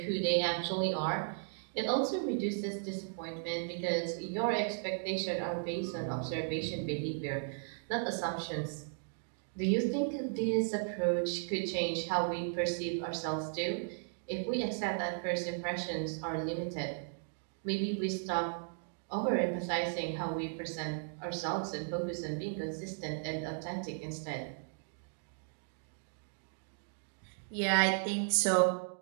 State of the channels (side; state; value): left; silent; digital silence